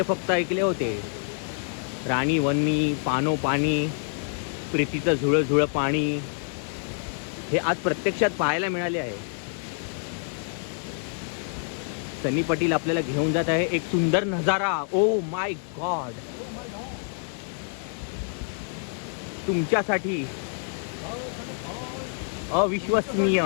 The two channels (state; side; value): silent; right; 60 dB below the other